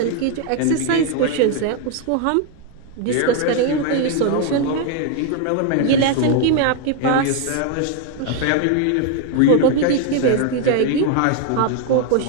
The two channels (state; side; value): different; both; correlation 0.01